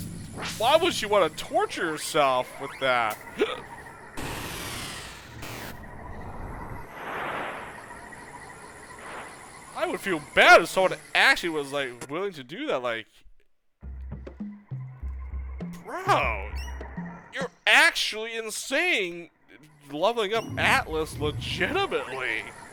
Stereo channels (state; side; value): identical; both; correlation 1.00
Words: to torture yourself with that? I would feel bad if someone actually was like willing to do that, like, bro, you're actually insane leveling up Atlas legitimately.